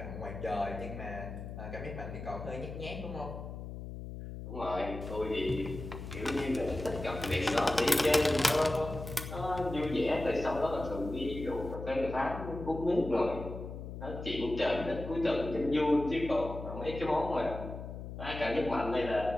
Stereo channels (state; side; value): noise; left; hum, 9 dB below the sound